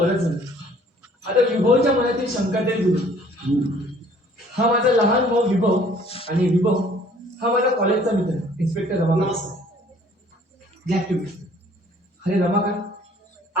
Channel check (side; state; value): both; normal; correlation 0.56